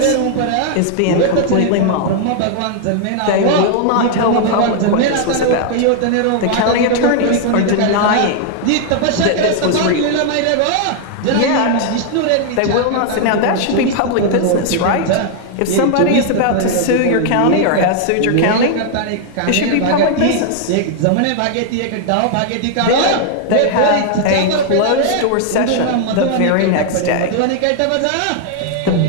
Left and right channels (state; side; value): different; both; correlation 0.00